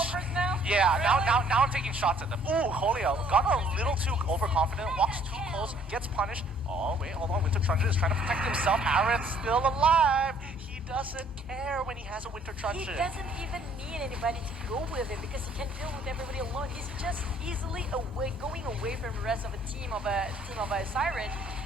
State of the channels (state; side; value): normal; both; correlation 0.60